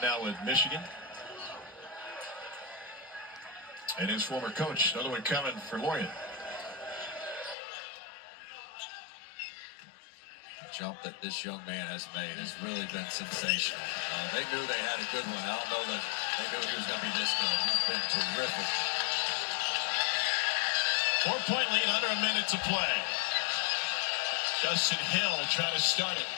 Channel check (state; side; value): drops out; right; at 7.6 s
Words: now with Michigan. And his former coach, another one coming for Lorient. The jump that this young man has made has really been sensational. They knew they had a good one. I don't know that they knew he was going to be this good. He's been terrific. 4-point lead, under a minute to play. Justin Hill trying to start it.